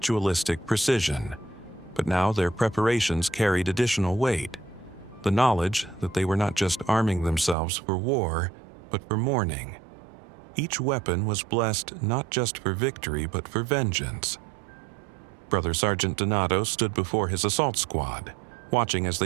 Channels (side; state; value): left; drops out; at 7.6 s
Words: precision, but now their preparations carried additional weight, the knowledge that they were not just arming themselves for war, but for mourning. Each weapon was blessed not just for victory, but for vengeance. Brother Sergeant Donato stood before his assault squad, watching as